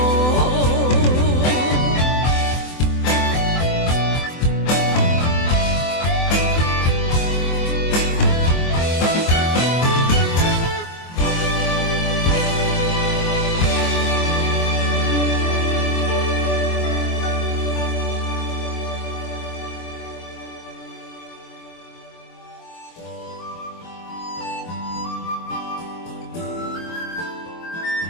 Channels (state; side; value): late; right; 24 ms